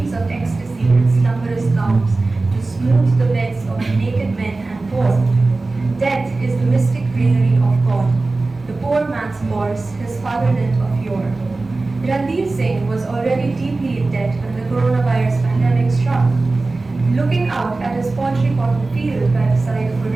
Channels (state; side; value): quieter; left; 3.4 dB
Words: of ecstasy and slumberous calms to smooth the beds of naked men and poor. Death is the mystic greenery of God. The poor man's horse, his fatherland of yore. Ranveer Singh was already deeply in debt when the coronavirus pandemic struck. Looking out at his poultry cotton field by the side of a